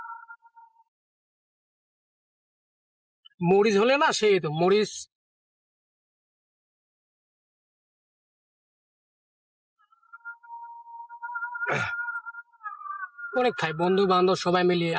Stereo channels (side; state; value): both; identical; correlation 1.00